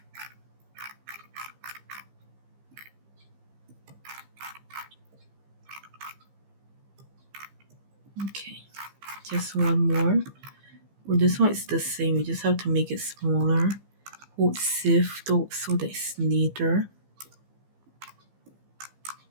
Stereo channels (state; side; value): late; left; 15 ms